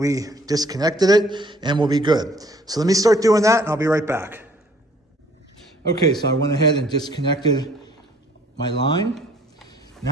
disconnected it, and we'll be good. So let me start doing that, and I'll be right back. Okay, so I went ahead and disconnected my line.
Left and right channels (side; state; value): both; normal; correlation 0.59